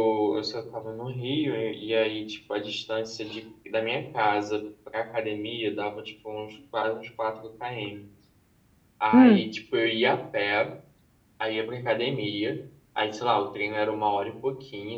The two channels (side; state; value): both; identical; correlation 1.00